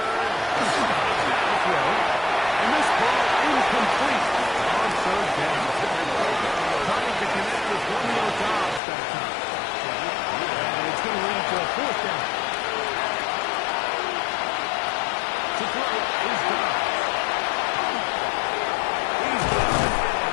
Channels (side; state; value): right; drops out; at 8.8 s